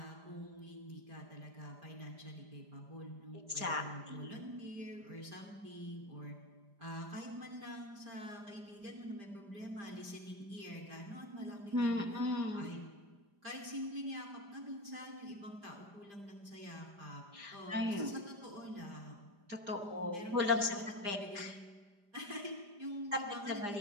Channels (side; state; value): left; late; 5.0 ms